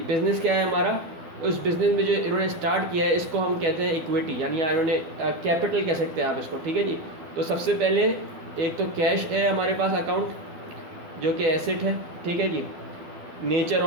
बिज़नेस क्या है हमारा, उस बिज़नेस में जो इन्होंने स्टार्ट किया है इसको हम कहते हैं इक्विटी, यानी इन्होंने कैपिटल कह सकते हैं आप इसको, ठीक है जी। तो सबसे पहले एक तो कैश है हमारे पास अकाउंट जो कि एसेट है, ठीक है जी। नेचर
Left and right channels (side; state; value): left; late; 12 ms